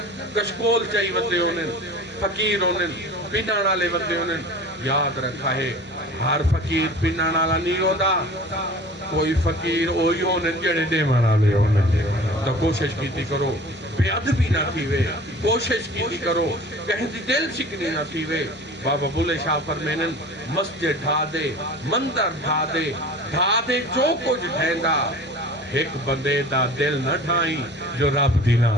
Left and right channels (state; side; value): normal; both; correlation 0.41